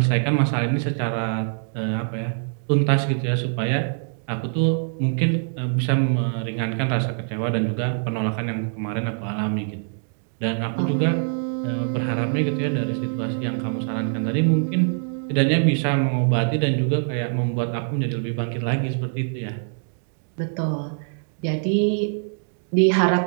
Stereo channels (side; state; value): left; silent; digital silence